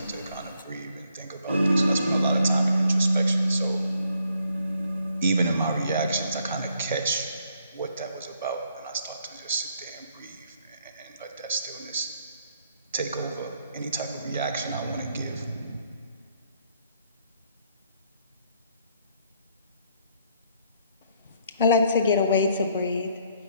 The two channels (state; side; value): inverted; both; correlation -0.70